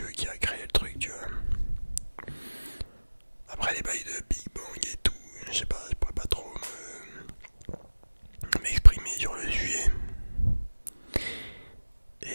qui a créé le truc, tu vois. Après les bails de Big Bang et tout, je sais pas, je pourrais pas trop m'exprimer sur le sujet.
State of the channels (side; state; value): both; inverted; correlation -1.00